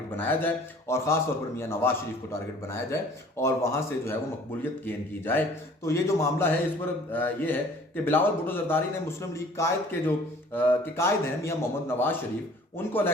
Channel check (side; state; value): both; normal; correlation 0.51